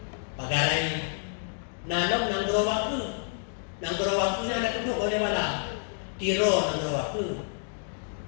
Pagarai. Nanong nang gerawaku na duduk oleh mana tiro nang gerawaku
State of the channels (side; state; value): right; silent; 59 dB below the other